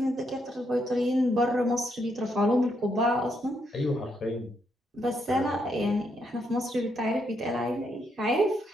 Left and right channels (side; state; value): both; normal; correlation 0.77